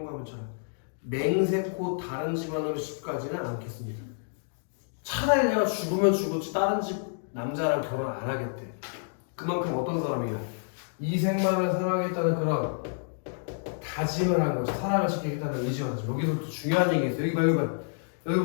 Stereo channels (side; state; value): right; silent; digital silence